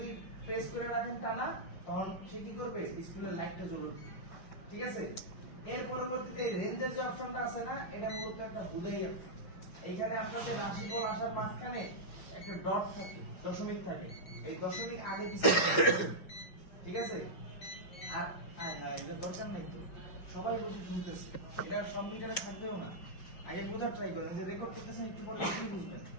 প্রেস করে রাখেন টানা, তখন সে কি করবে, ডিসপ্লে লাইটটা জ্বলে উঠবে। ঠিক আছে, এর পরবর্তীতে রেঞ্জের যে অপশনটা আছে না, এটা মূলত একটা হুদাই অপশন। এইখানে আপনাদের রাশিফল আসার মাঝখানে একটা ডট থাকে, দশমিক থাকে, এই দশমিক আগে পিছিয়ে ঠিক আছে। আর এটা দরকার নাই তো, সবাই বসে শুনতেছে, এটা সব মিটারে থাকবেও না। আগে বোঝার ট্রাই করেন, যে রেকর্ড করতেছেন একটু পরে কি বুঝবেন,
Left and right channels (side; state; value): right; late; 4.9 ms